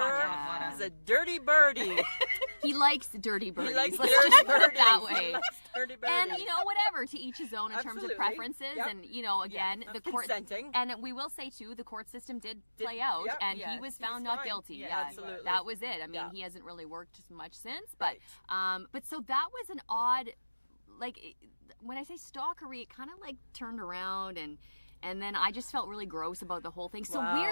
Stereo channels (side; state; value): both; inverted; correlation -1.00